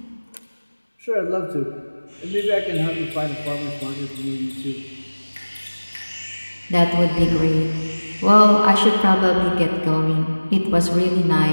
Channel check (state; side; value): inverted; both; correlation -1.00